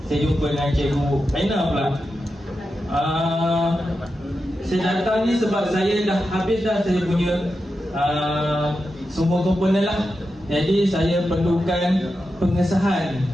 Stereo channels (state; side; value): normal; both; correlation 0.89